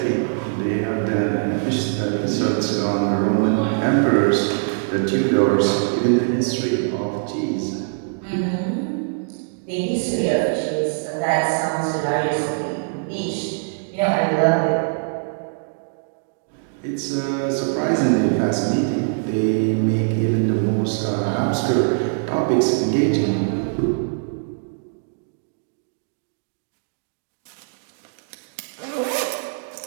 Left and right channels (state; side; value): silent; left; digital silence